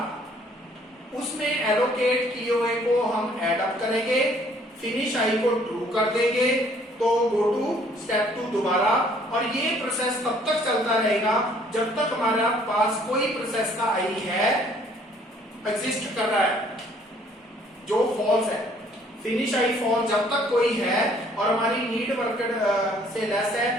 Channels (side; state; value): both; normal; correlation 0.60